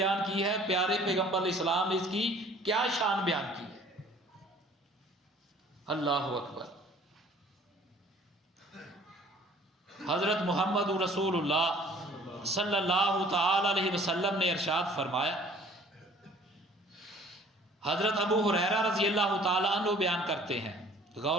की है, प्यारे पैगंबर इस्लाम ने इसकी क्या शान बयान की है। अल्लाह अकबर। हजरत मोहम्मद रसूलुल्लाह सल्लल्लाहु ताला अलैहि वसल्लम ने इरशाद फरमाया, हजरत अबू हुरैरा रज़ी अल्लाह ताला अन्हु बयान करते हैं,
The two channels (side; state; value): both; normal; correlation 0.53